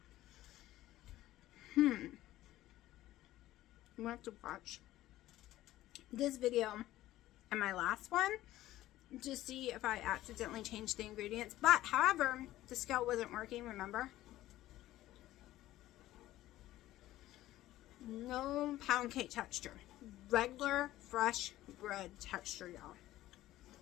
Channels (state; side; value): quieter; right; 15.2 dB